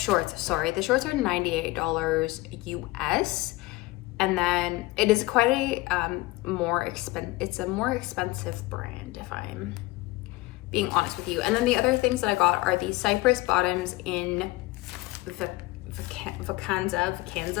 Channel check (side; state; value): right; quieter; 20.1 dB